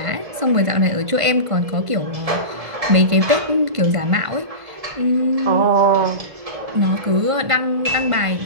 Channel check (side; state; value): left; late; 1.5 ms